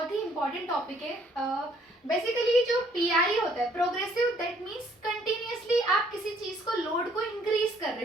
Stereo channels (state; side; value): normal; both; correlation 0.63